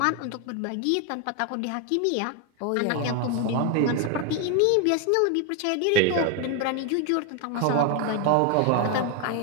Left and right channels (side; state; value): both; different; correlation 0.01